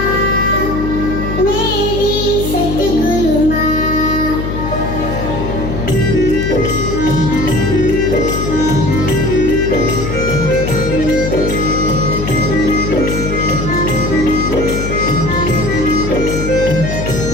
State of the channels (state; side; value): noise; left; hum, 4 dB below the sound